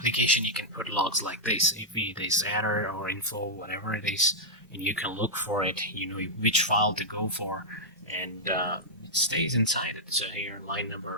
you can put logs like this. If it is error or info, whatever it is, and you can look for it, you know which file to go for, and it stays inside it. So here line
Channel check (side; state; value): both; normal; correlation -0.05